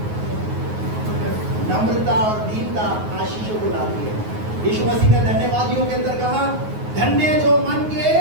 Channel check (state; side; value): late; left; 9.4 ms